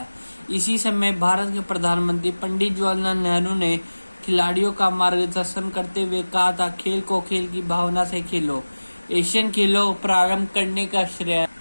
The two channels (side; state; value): both; inverted; correlation -1.00